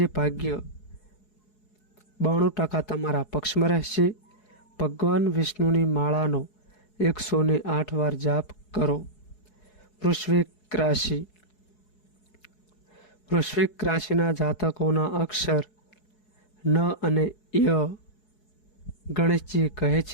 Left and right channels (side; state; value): right; late; 4.7 ms